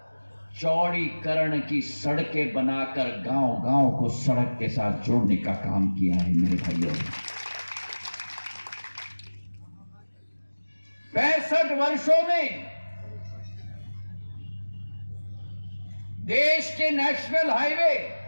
चौड़ीकरण की सड़कें बनाकर गांव-गांव को सड़क के साथ जोड़ने का काम किया है मेरे भाइयों। 65 वर्षों में देश के नेशनल हाईवे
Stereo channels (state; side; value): inverted; both; correlation -1.00